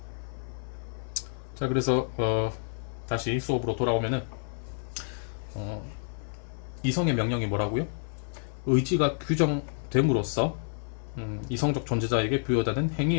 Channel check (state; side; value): silent; right; 56 dB below the other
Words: 자, 그래서 다시 수업으로 돌아오면은 이성의 명령이 뭐라고요? 의지가 규정됨으로써 이성적 존재자에게 부여되는